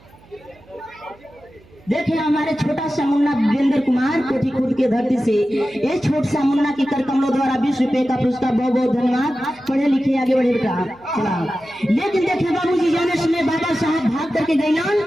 देखिए हमारे छोटा सा मुन्ना वीरेंद्र कुमार कोठी खुद के धरती से ये छोटा सा मुन्ना की कर कमलों द्वारा 20 रुपए का पुरस्कार, बहुत बहुत धन्यवाद। पढ़े लिखे आगे बढ़े बेटा चला। लेकिन देखिए बाबूजी जाने समय बाबा साहब भाग करके गए,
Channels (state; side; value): noise; right; hum, 27 dB below the sound